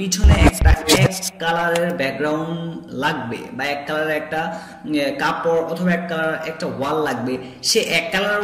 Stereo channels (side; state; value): both; identical; correlation 1.00